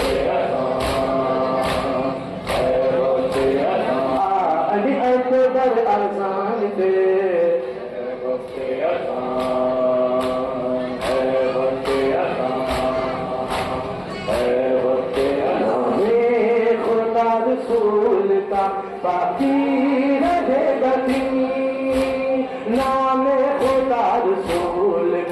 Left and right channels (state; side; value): identical; both; correlation 1.00